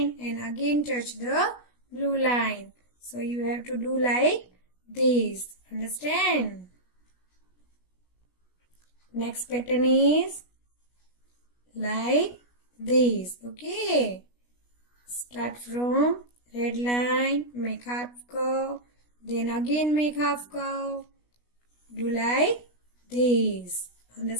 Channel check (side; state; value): right; late; 16 ms